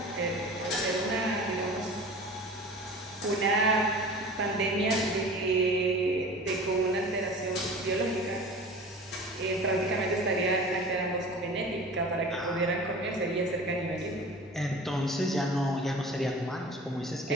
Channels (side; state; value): both; normal; correlation 0.39